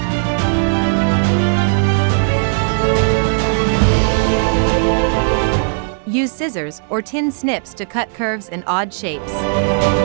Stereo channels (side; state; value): left; silent; digital silence